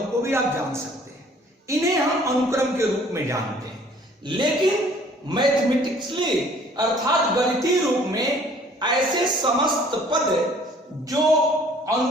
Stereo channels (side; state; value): both; normal; correlation 0.56